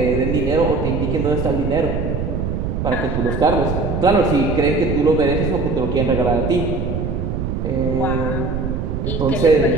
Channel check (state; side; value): noise; right; rumble, 2 dB below the sound